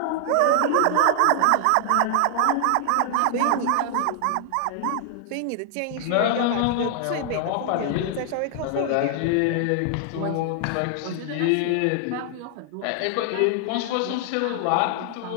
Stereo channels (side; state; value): both; different; correlation 0.00